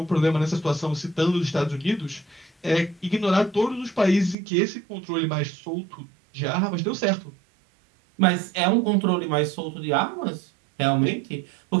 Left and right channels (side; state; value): left; drops out; at 4.4 s